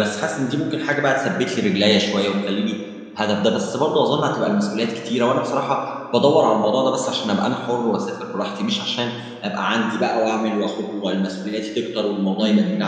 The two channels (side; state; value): both; identical; correlation 1.00